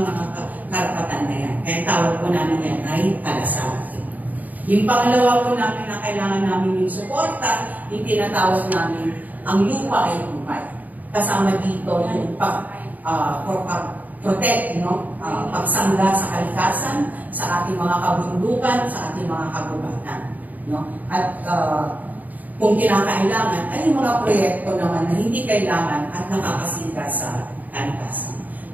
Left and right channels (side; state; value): left; late; 0.079 ms